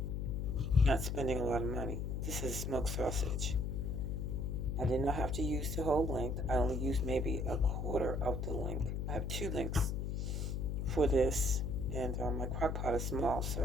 not spending a lot of money. This is smoked sausage. I did not have to use the whole length. I only used maybe a quarter of the length. I have 2 lengths for this, and my crock pot is small,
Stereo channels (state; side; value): noise; left; hum, 1 dB below the sound